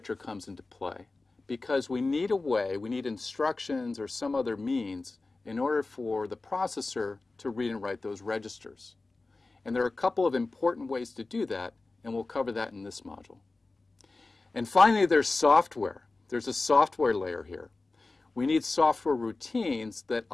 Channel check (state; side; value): quieter; right; 3.4 dB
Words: comes into play because we need a way, we need instructions or some other means in order for the processor to read and write those registers. And there are a couple of important ways to do that, and we'll cover that in this module. And finally, there's software. There's a software layer here. We need software routines that